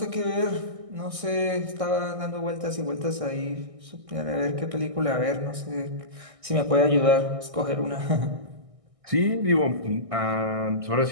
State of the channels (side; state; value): left; late; 1.6 ms